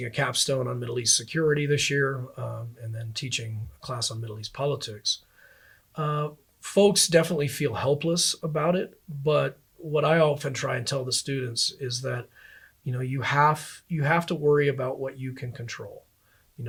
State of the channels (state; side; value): identical; both; correlation 1.00